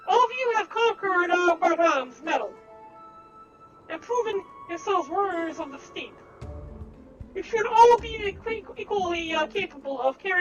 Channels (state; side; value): identical; both; correlation 1.00